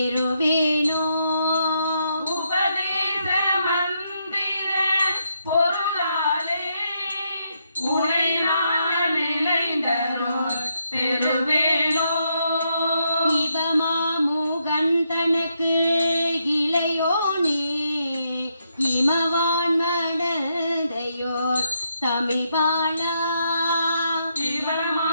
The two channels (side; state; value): both; inverted; correlation -0.79